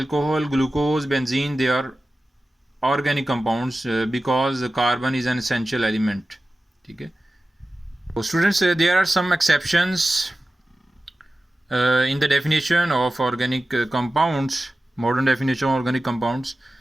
glucose, benzene, they are organic compounds because carbon is an essential element, ठीक है। तो students there are some exceptions in the definition of organic compounds, modern definition of organic compounds।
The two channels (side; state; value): both; normal; correlation 0.95